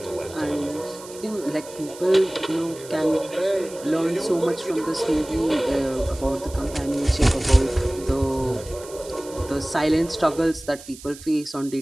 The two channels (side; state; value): right; noise; hiss, 17 dB below the sound